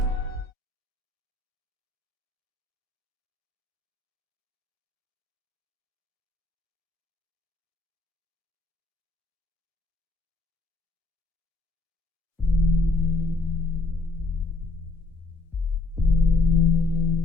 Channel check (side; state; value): right; quieter; 3.2 dB